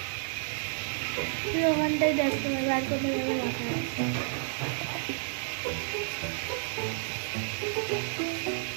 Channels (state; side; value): silent; left; 57 dB below the other